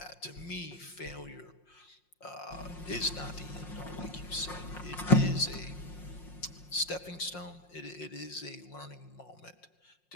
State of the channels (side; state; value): right; late; 5.6 ms